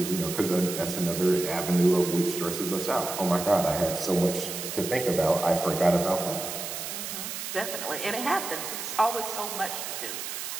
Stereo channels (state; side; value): noise; right; hiss, 6 dB below the sound